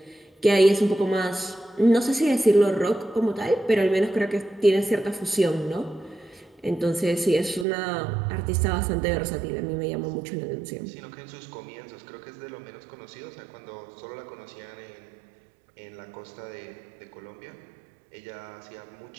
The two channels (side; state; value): left; drops out; at 7.7 s